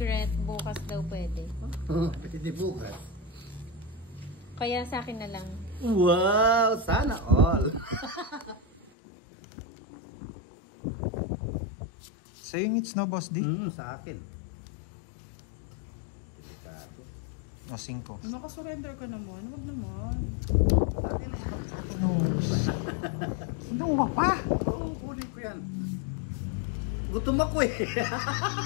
bukas daw pwede. Pwede bukas. Kaya sa akin na lang. Wow, sana all. Saying it's no, Boss D. Sa akin. O, 5. Makasurrender ka naman. Huwag naman. Kinuha pa. Oo, kunin ko yan. Gutom ako eh.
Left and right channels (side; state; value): right; drops out; at 8.9 s